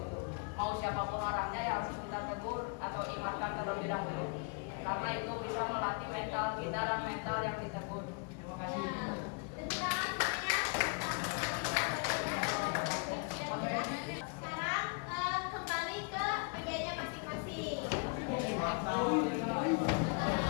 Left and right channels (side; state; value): right; quieter; 36.5 dB